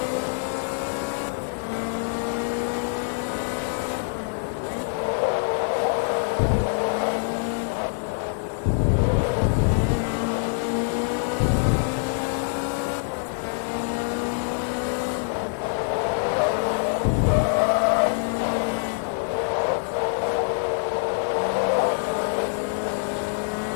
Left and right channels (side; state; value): right; silent; digital silence